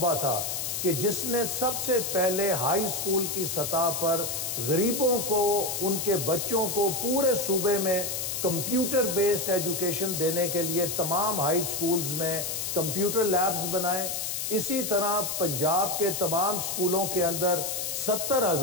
تھا کہ جس نے سب سے پہلے ہائی سکول کی سطح پر غریبوں کو، ان کے بچوں کو پورے صوبے میں کمپیوٹر بیسڈ ایجوکیشن دینے کے لیے تمام ہائی سکولز میں کمپیوٹر لیبز بنائے۔ اسی طرح پنجاب کے تمام سکولوں کے اندر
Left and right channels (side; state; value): left; noise; hiss, 3 dB below the sound